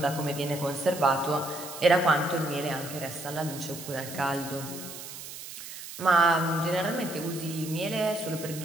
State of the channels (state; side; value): noise; right; hiss, 11 dB below the sound